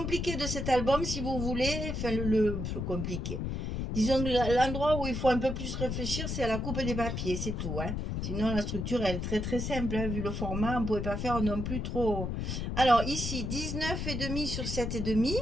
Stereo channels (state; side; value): noise; left; rumble, 3 dB below the sound